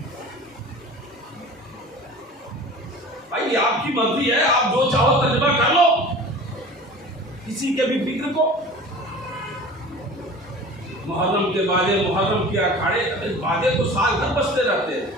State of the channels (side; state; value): both; normal; correlation 0.40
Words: بھائی آپ کی مرضی ہے، آپ جو چاہو ترجمہ کر لو، کسی کے بھی فکر کو۔ محرم کے بازے، محرم کے اکھاڑے، بازے تو سال بھر بجتے رہتے ہیں۔